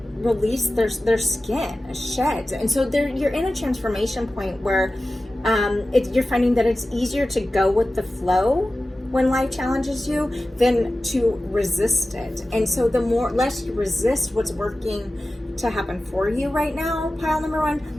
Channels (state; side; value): normal; both; correlation 0.95